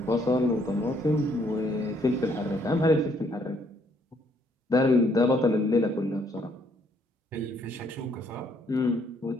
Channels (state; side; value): normal; both; correlation 0.68